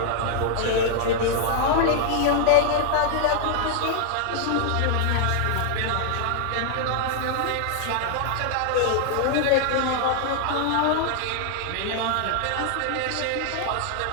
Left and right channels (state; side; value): different; both; correlation 0.00